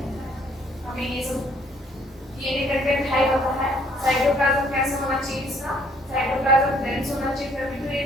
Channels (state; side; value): normal; both; correlation 0.63